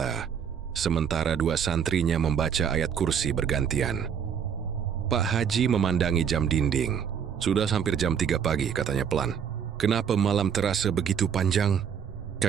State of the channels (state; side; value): quieter; left; 7.7 dB